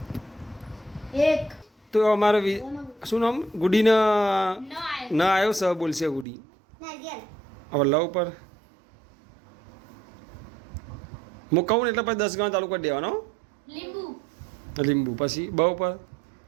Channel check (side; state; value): left; drops out; at 6.2 s